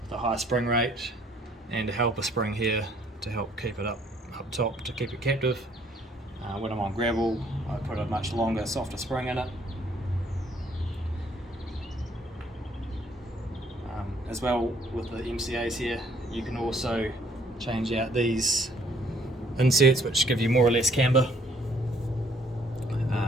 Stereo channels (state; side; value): normal; both; correlation 0.63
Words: with a high spring rate and a helper spring here to help keep it up top to keep it captive. When I'm on gravel, I put a much longer, softer spring in it. As well with the MCAs here, you can also change out these inserts which give you more or less camber.